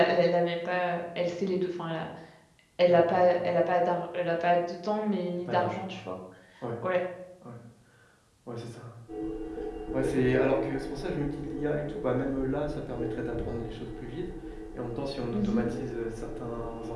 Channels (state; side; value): identical; both; correlation 1.00